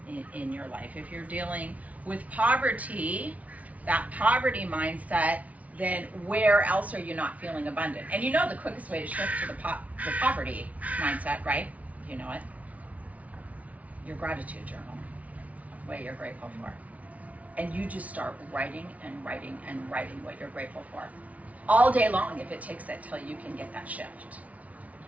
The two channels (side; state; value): left; late; 0.069 ms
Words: in your life? If you're dealing with poverty, that poverty mindset, then where else are you not feeling abundant? And you know the quickest way to shift to the poverty mindset, right? You know it. Your gratitude journal, what you're grateful for. And you just start writing and writing and writing what you're grateful for. All day long, if it takes it till you can get that shift.